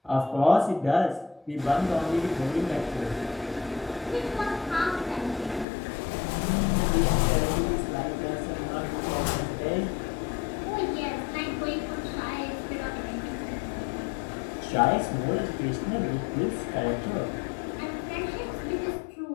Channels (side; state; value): right; drops out; at 5.7 s